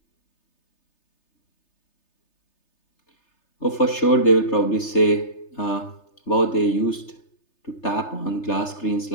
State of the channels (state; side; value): late; right; 3.3 ms